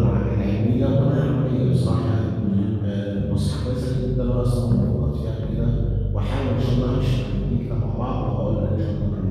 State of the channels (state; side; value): identical; both; correlation 1.00